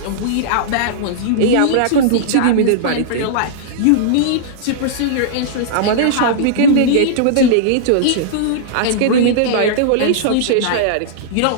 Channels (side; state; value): both; different; correlation -0.02